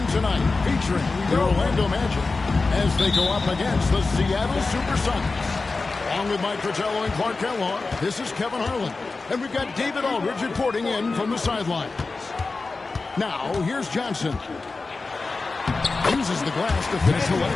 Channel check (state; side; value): quieter; right; 3.8 dB